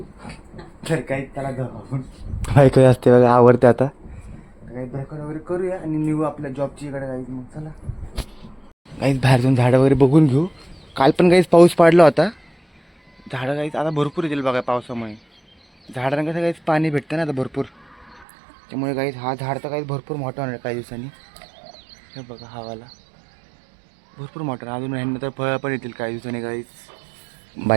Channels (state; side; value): drops out; left; at 18.2 s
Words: तर काही त्याला जाऊ बायको असते बघा, आवडते आता। काही ब्रेकफास्ट वगैरे करूया आणि निघू आपल्या जॉबची इकडे गाईज। मग चला गाईज बाहेर जाऊन झाडं वगैरे बघून घेऊ। काल पण गाईज पाऊस पडला होता, झाडं गाईज आता भरपूर येतील बघा पावसामुळे। झाडांना कसं गाईज पाणी भेटतं ना आता भरपूर, त्यामुळे गाईज हा झाड तर गाईज भरपूर मोठा होणार काही दिवसांनी। हे बघा हवाला भरपूर मोठा, अजून ह्यांना तर फळं पण येतील काही दिवसांनी गाईज।